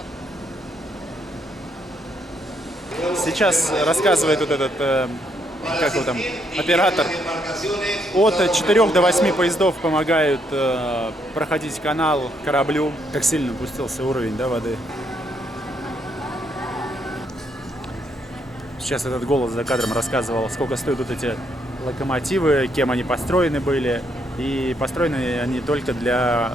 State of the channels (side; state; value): both; normal; correlation 0.74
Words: Сейчас рассказывает вот этот, как его там, оператор. От 4 до 8 поездов помогают проходить канал кораблю. Как сильно опустился уровень, да, воды. Сейчас этот голос за кадром рассказывал, сколько стоят вот эти локомотивы, кем они построены были. И построены они только для